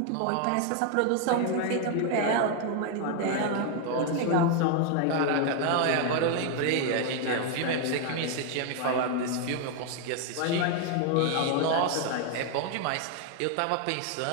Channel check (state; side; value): different; both; correlation 0.00